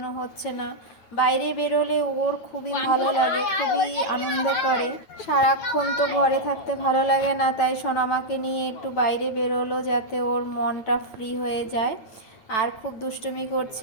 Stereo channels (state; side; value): late; right; 9.0 ms